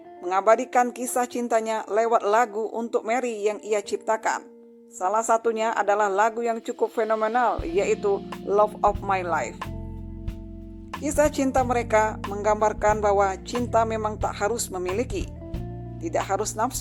mengabadikan kisah cintanya lewat lagu untuk Mary yang ia ciptakan. Salah satunya adalah lagu yang cukup fenomenal, yaitu Love of My Life. Kisah cinta mereka menggambarkan bahwa cinta memang tak harus memiliki, tidak harus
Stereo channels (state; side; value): identical; both; correlation 1.00